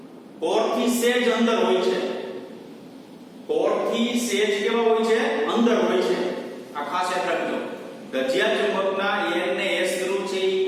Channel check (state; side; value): identical; both; correlation 1.00